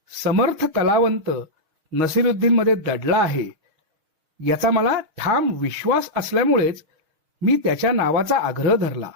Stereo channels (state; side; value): late; left; 6.3 ms